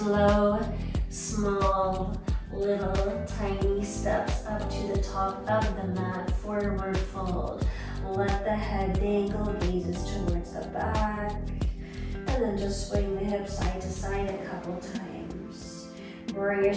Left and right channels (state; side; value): identical; both; correlation 1.00